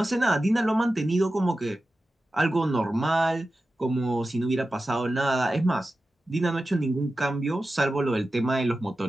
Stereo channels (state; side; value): normal; both; correlation 0.93